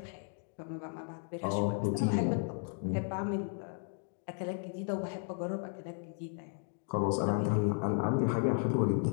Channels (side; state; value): right; silent; 55 dB below the other